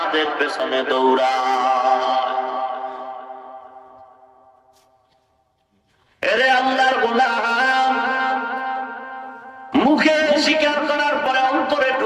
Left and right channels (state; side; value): identical; both; correlation 1.00